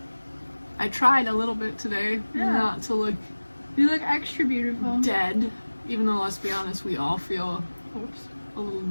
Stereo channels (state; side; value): inverted; both; correlation -1.00